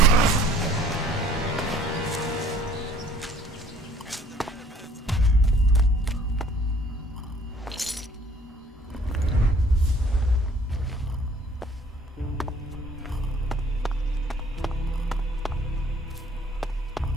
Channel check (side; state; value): both; normal; correlation 0.56